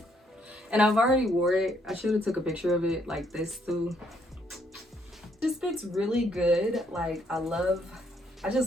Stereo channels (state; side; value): normal; both; correlation 0.70